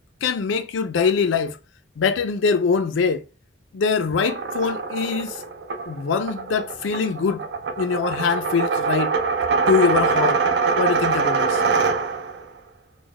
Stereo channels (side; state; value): both; normal; correlation -0.08